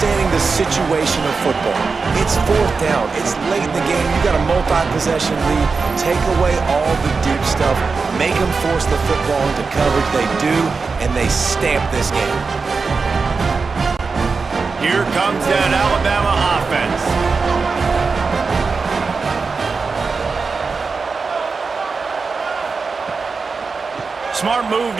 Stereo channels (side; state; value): left; quieter; 4.6 dB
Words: the situation of football. It's 4th down. It's late in the game. You got a multi-possession lead. Take away all the deep stuff. Make them force the football into coverage. They do, and they stamp this game. Here comes that Alabama offense. Smart move